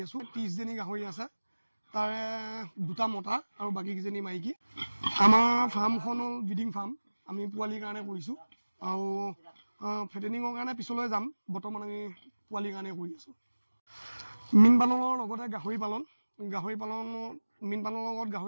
আছো। 30জনী গাহৰি আছে, তাৰে 2টা মতা আৰু বাকীকেইজনী মাইকী। আমাৰ ফাৰ্মখন হ'ল ব্ৰিডিং ফাৰ্ম, আমি পোৱালিৰ কাৰণে কৰিছোঁ আৰু ফেটেনিঙৰ কাৰণে পিছলৈ যাম। বৰ্তমান আমি পোৱালিৰ কাৰণে কৰি আছোঁ। মীন পালনৰ লগতে গাহৰি পালন মীন পালনৰ লগত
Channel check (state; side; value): inverted; both; correlation -1.00